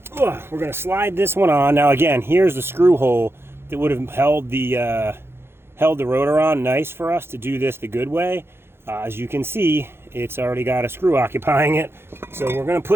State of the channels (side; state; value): left; late; 0.11 ms